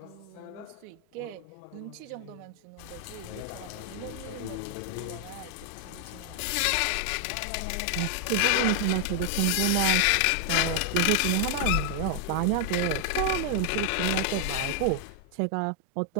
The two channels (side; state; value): both; different; correlation 0.00